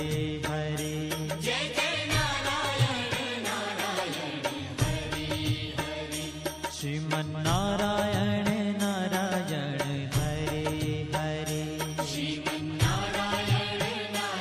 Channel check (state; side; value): identical; both; correlation 1.00